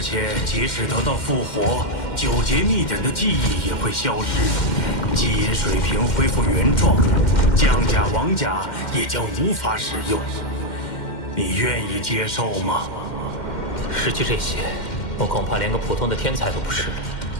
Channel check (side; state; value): right; late; 2.1 ms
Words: 即使得到复活，9节秘典的记忆也会消失，基因水平恢复原状，降甲王甲也将无法使用。你愿意接受吗？失去这些，我恐怕连个普通的天才都不是了。